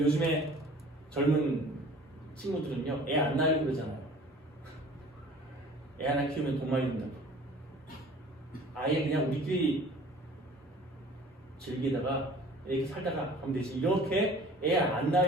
요즘에 젊은 친구들은요, 애 안 낳으려고 그러잖아요. 애 하나 키우면 돈 많이 든다고. 아예 그냥 우리끼리 즐기다가 이렇게 살다가 하면 되지. 이렇게 애 안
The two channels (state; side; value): normal; both; correlation 0.47